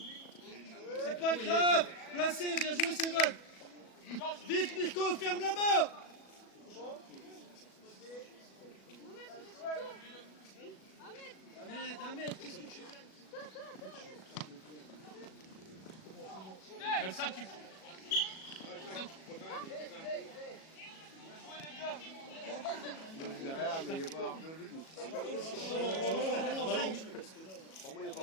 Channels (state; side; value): late; right; 37 ms